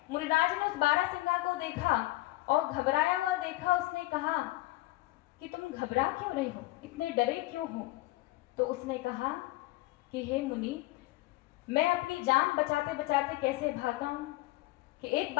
मुनिराज ने उस बारहसिंगा को देखा और घबराया हुआ देखा। उसने कहा कि तुम घबरा क्यों रहे हो, इतने डरे क्यों हो? तो उसने कहा कि हे मुनि, मैं अपनी जान बचाते बचाते कैसे भागा हूं कि एक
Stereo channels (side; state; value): right; quieter; 19.2 dB